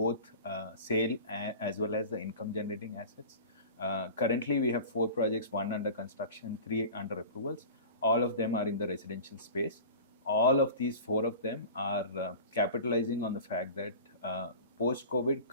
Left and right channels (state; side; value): inverted; both; correlation -0.36